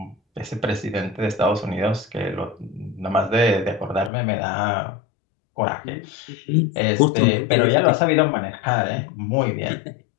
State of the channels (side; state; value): right; drops out; at 4.1 s